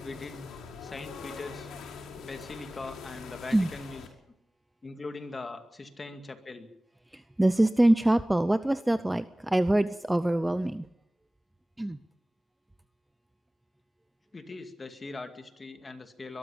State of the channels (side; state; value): both; normal; correlation 0.98